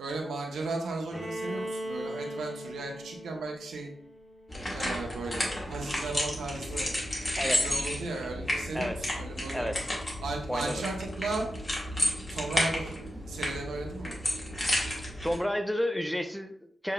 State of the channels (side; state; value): both; normal; correlation 0.89